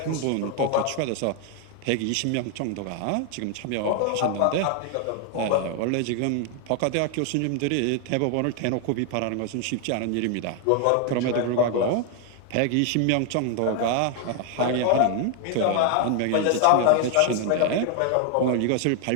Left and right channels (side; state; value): both; different; correlation 0.00